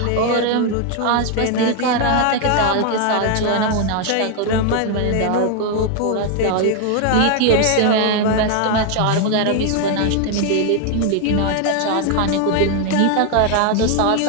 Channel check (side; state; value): both; different; correlation 0.00